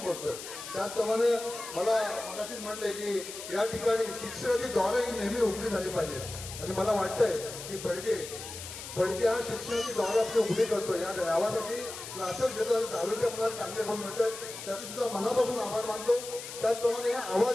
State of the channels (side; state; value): left; noise; hiss, 10 dB below the sound